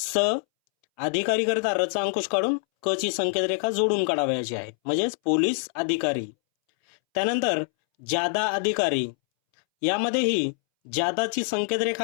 अधिकारी करता र चा अंकुश काढून क ची संकेत रेखा जोडून काढावयाची आहे, म्हणजेच पोलीस अधिकारी. त्यानंतर जादा अधिकारी. यामध्येही जादाची संकेत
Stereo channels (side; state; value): right; silent; 62 dB below the other